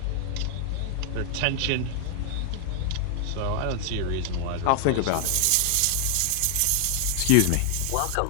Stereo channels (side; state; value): both; different; correlation 0.00